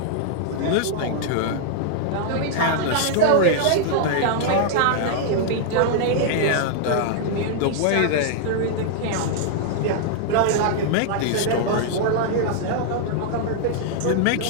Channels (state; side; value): different; both; correlation -0.01